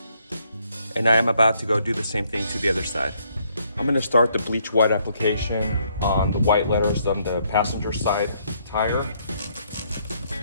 And I am about to go do the same thing to the other side. I'm gonna start the Bleche-White application on the white letters on the passenger side tire.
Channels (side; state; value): both; inverted; correlation -0.70